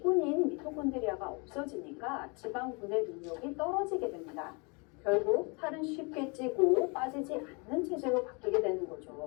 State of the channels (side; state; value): right; quieter; 31.9 dB